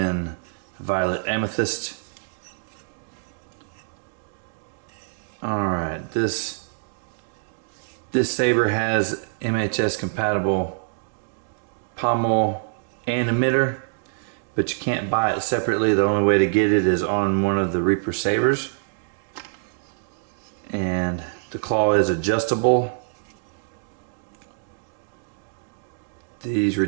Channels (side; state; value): left; silent; digital silence